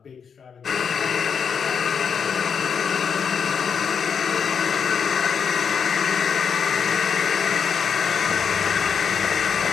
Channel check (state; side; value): quieter; right; 6.7 dB